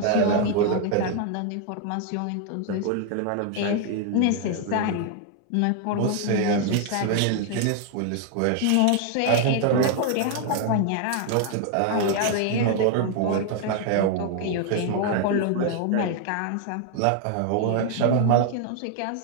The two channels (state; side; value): different; both; correlation 0.00